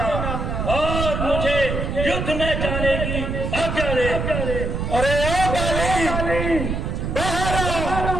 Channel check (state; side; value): noise; right; rumble, 2 dB below the sound